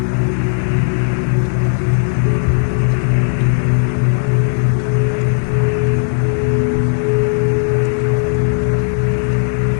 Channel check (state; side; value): silent; right; 69 dB below the other